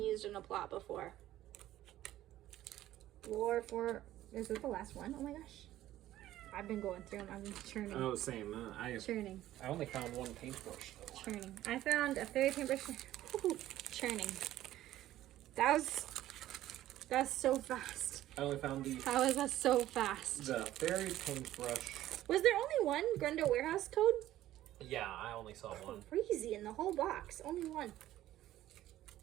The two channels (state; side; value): quieter; left; 14.0 dB